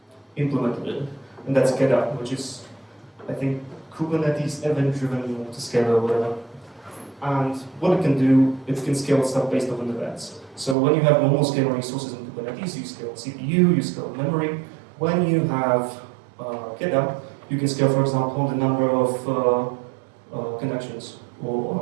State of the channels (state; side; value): drops out; left; at 10.8 s